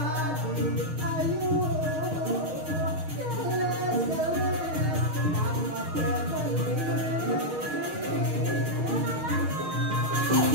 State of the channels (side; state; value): left; late; 6.4 ms